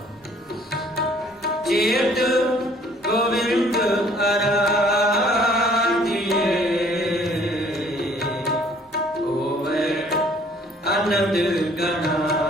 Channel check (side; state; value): both; normal; correlation 0.58